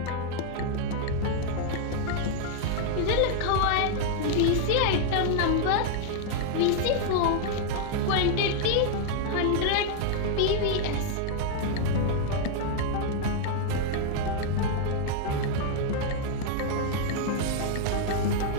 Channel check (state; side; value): different; both; correlation 0.00